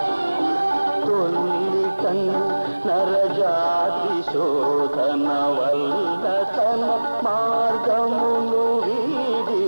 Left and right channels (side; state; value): both; inverted; correlation -1.00